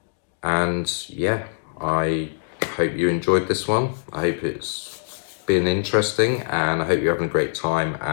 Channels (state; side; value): silent; right; digital silence